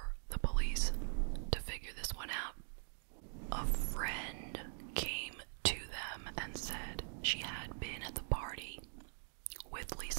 the police to figure this one out. A friend came to them and said she had been at the party with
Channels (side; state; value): left; silent; digital silence